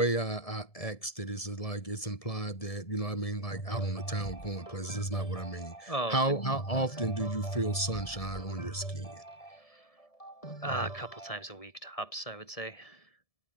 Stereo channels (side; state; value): right; late; 1.7 ms